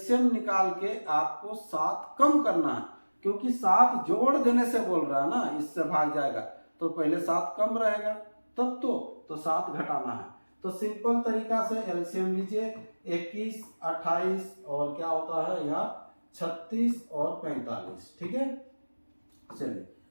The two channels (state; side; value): inverted; both; correlation -1.00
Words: निकाल के आपको 7 कम करना है, क्योंकि 7 जोड़ देने से बोल रहा है ना, इससे भाग जाएगा तो पहले 7 कम रहेगा, तब तो 7 घटाना है। तो सिंपल तरीका से एलसीएम लीजिए। 21, 28 और क्या होता है यहाँ 36 और 45। ठीक है, चलिए